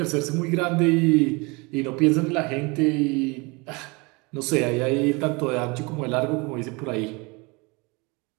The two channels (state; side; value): quieter; left; 27.3 dB